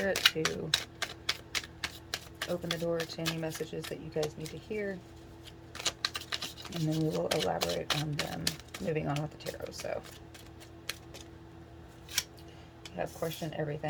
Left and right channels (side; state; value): both; identical; correlation 1.00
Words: to open the door to any messages that you guys need to hear, and then we will elaborate on them moving on with the tarot. So we have question